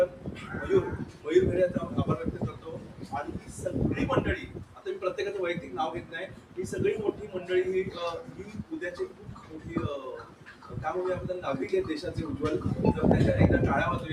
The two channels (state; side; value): identical; both; correlation 1.00